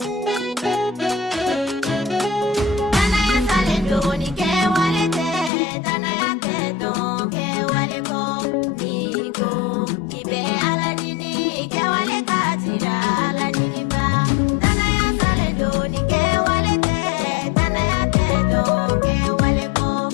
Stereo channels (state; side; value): drops out; right; at 5.5 s